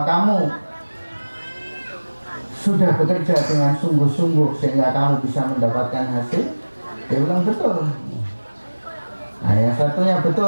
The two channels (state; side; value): inverted; both; correlation -1.00